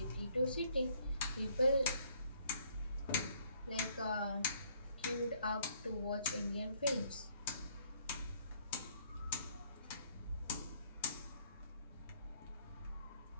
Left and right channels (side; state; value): both; inverted; correlation -0.65